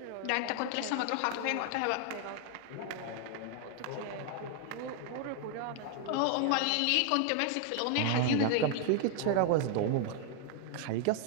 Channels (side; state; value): both; different; correlation 0.00